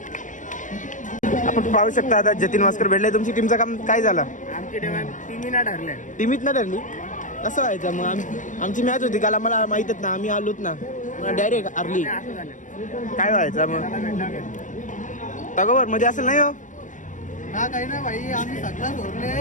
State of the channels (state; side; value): late; right; 0.37 ms